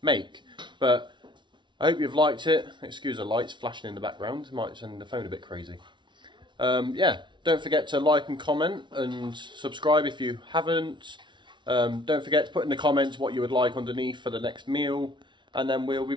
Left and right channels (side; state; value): left; late; 0.23 ms